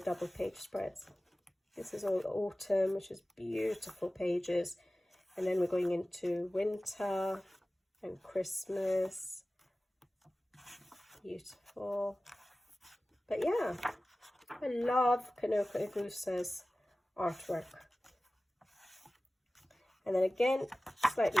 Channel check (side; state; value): both; normal; correlation 0.97